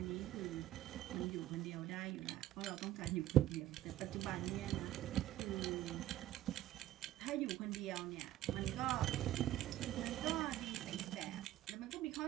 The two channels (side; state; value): left; quieter; 13.7 dB